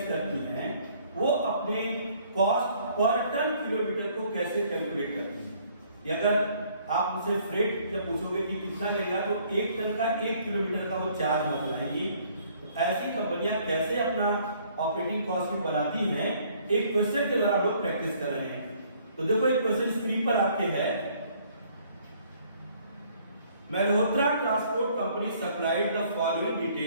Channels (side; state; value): both; inverted; correlation -0.61